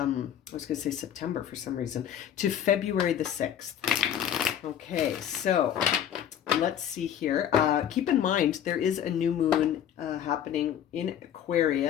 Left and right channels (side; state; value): right; quieter; 9.8 dB